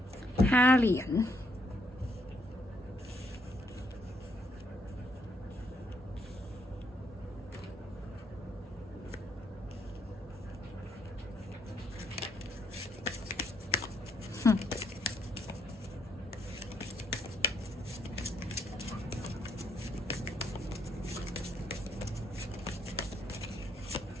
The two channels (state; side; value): normal; both; correlation 0.73